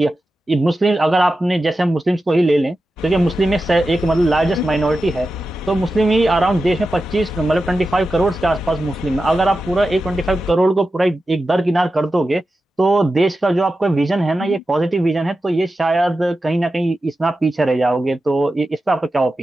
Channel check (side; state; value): both; normal; correlation 0.92